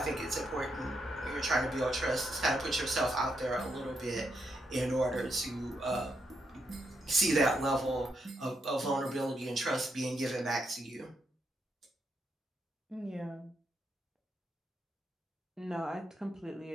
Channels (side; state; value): both; normal; correlation 0.80